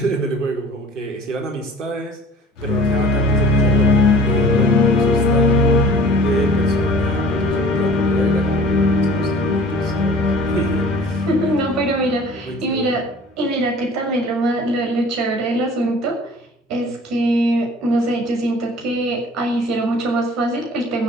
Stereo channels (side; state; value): both; normal; correlation 0.48